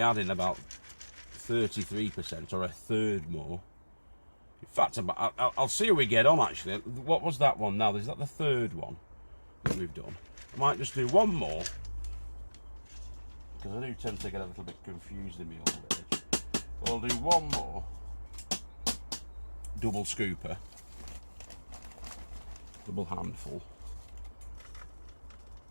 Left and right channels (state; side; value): inverted; both; correlation -1.00